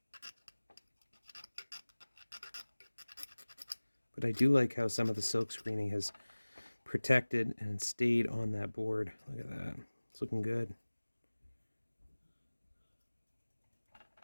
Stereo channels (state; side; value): inverted; both; correlation -1.00